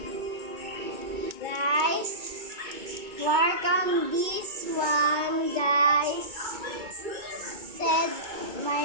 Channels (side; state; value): left; late; 2.2 ms